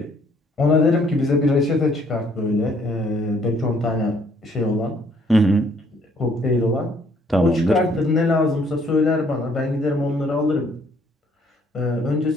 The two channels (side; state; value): both; normal; correlation 0.64